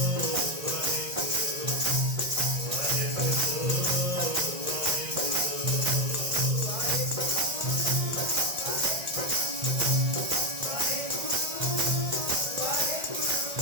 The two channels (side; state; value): left; late; 1.6 ms